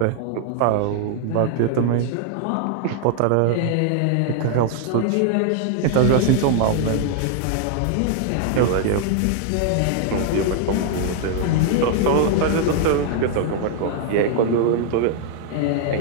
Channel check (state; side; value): different; both; correlation 0.00